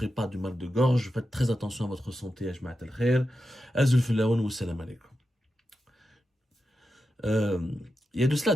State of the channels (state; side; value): normal; both; correlation 0.89